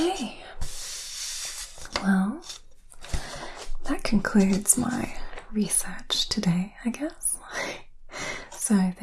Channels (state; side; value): identical; both; correlation 1.00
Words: Well, that concludes my research today, I guess. So